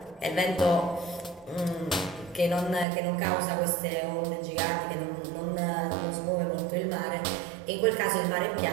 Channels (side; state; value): left; drops out; at 2.9 s